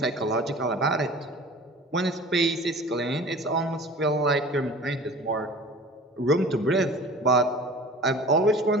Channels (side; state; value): both; normal; correlation 0.42